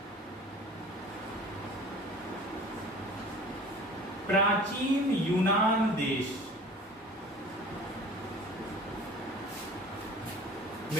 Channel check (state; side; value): normal; both; correlation 0.43